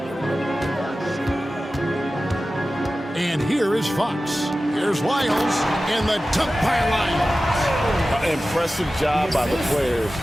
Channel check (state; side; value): normal; both; correlation 0.95